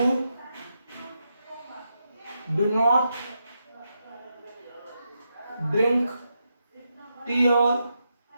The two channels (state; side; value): inverted; both; correlation -0.84